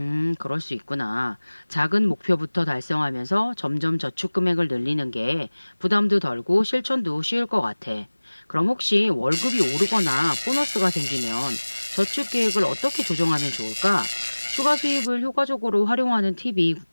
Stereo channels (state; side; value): inverted; both; correlation -1.00